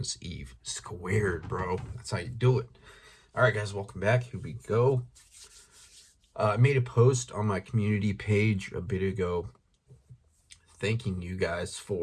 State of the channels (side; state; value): both; identical; correlation 1.00